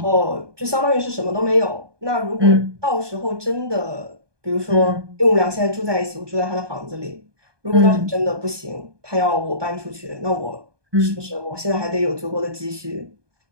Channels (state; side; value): late; left; 1.2 ms